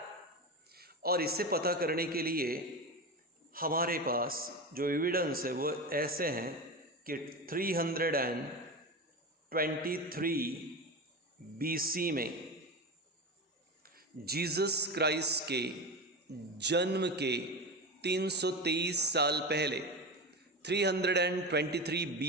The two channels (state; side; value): normal; both; correlation 0.22